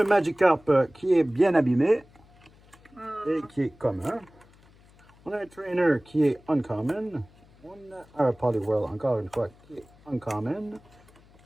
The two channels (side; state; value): left; noise; hum, 27 dB below the sound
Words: Magikarp qui est bien abîmé et qui est commun. On a un Trainer qui est uncommon. On a un Poliwhirl encore une fois qui est uncommon.